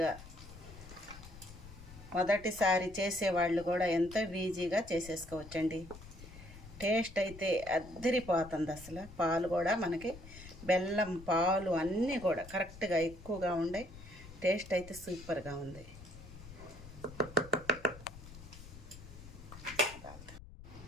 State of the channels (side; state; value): left; noise; rumble, 16 dB below the sound